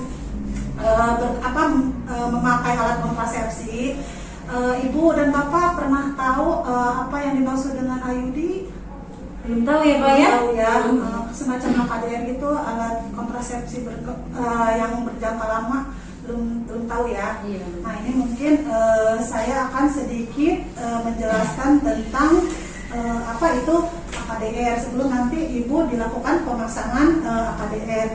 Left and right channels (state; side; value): identical; both; correlation 1.00